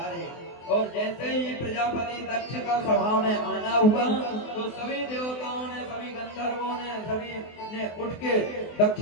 और जैसे ही प्रजापति दक्ष का सभा में आना हुआ, तो सभी देवताओं ने, सभी गंधर्वों ने, सभी ने उठ के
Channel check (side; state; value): right; late; 24 ms